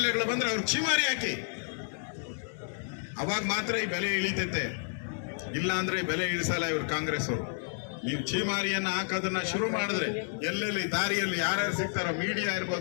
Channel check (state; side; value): silent; right; digital silence